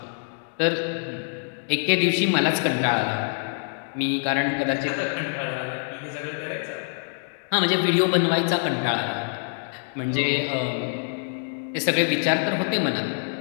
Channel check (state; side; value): silent; right; digital silence